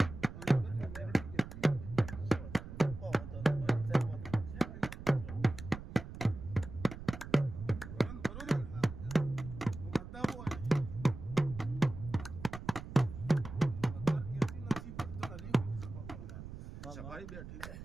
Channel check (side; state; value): right; noise; rumble, 11 dB below the sound